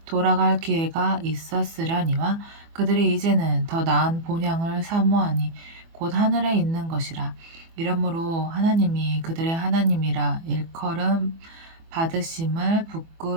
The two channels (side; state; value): left; late; 24 ms